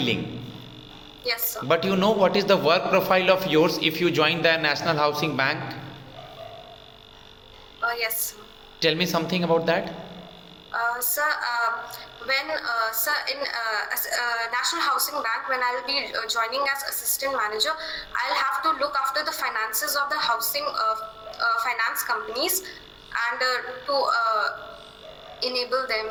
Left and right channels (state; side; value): identical; both; correlation 1.00